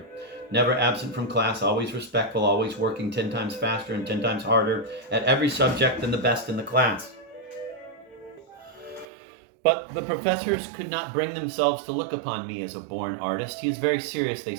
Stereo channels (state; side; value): drops out; left; at 9.1 s